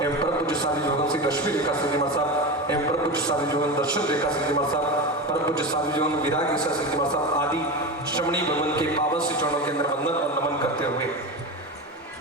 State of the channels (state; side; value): normal; both; correlation 0.23